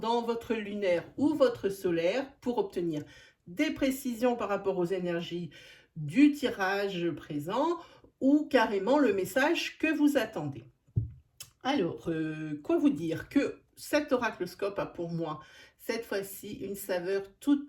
votre lunaire ou votre solaire pour obtenir des précisions par rapport aux énergies du tirage présent ou carrément le message que vous attendez. Alors, quoi vous dire que cet oracloscope a pour moi cette fois-ci une saveur toute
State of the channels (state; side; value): identical; both; correlation 1.00